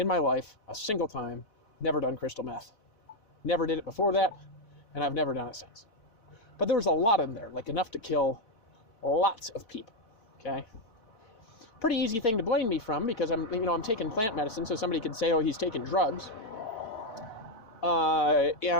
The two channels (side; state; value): right; late; 4.0 ms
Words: my life, a single time, never done crystal meth. Never did it before that, and I've never done it since. But there was a lot in there, enough to kill lots of people, okay? Pretty easy thing to blame me from, because I'm taking plant medicine, so somebody could say, oh, he's taking drugs.